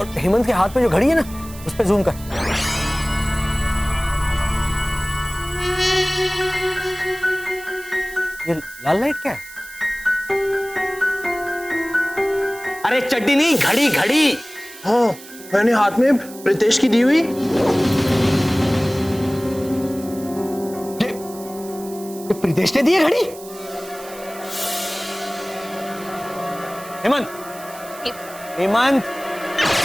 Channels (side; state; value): right; noise; hiss, 17 dB below the sound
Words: हेमंत के हाथ में जो घड़ी है ना उस पे जूम कर। ये लाल लाइट क्या है? अरे चड्डी नहीं, घड़ी घड़ी। हाँ मैंने हाथ में प्रीतेश की दी हुई। ये प्रीतेश ने दी है घड़ी। हेमंत, हेमंत,